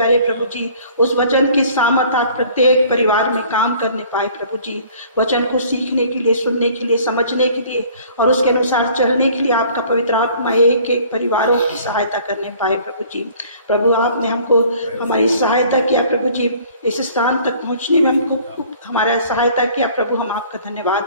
प्रभु जी, उस वचन की सामर्थ आज प्रत्येक परिवार में काम करने पाए प्रभु जी। वचन को सीखने के लिए, सुनने के लिए, समझने के लिए और उसके अनुसार चलने के लिए आपका पवित्र आत्मा एक एक परिवारों की सहायता करने पाए प्रभु जी। प्रभु आपने हमको हमारी सहायता किया प्रभु जी, इस स्थान तक पहुंचने में हमको हमारा सहायता किया प्रभु। हम आपका धन्यवाद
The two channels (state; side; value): inverted; both; correlation -0.53